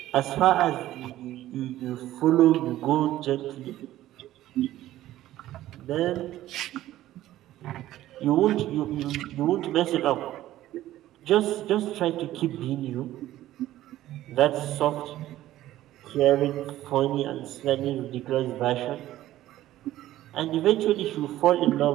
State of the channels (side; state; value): left; quieter; 14.3 dB